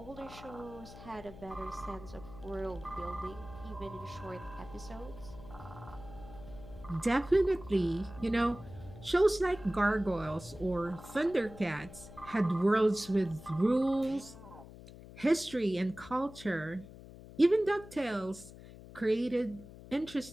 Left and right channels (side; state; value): left; noise; hum, 16 dB below the sound